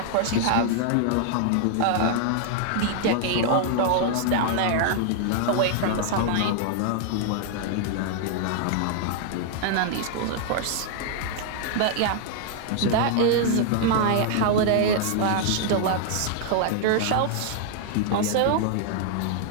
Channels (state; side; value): different; both; correlation 0.00